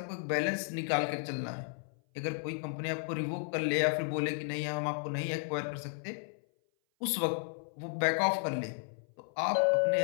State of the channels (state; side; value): silent; right; 55 dB below the other